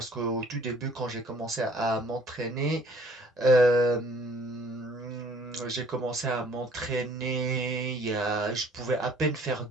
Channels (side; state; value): both; normal; correlation 0.56